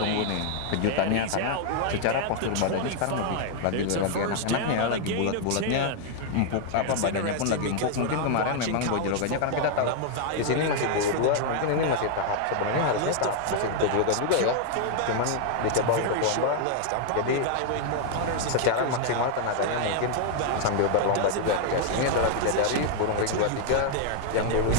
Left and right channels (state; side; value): different; both; correlation 0.00